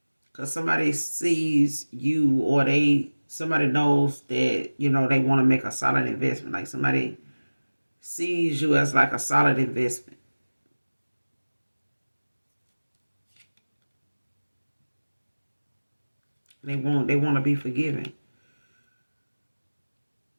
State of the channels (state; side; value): inverted; both; correlation -1.00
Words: because somebody sees you, or somebody knows that, you know, they want to make a solid investment. Like somebody sees you as like a solid investment. They want to be forgiven.